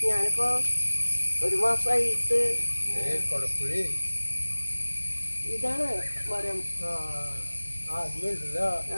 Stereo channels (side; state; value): both; inverted; correlation -1.00